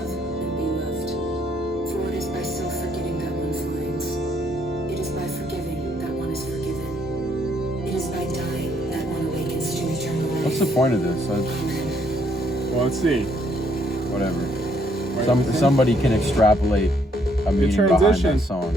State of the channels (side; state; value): both; normal; correlation 0.69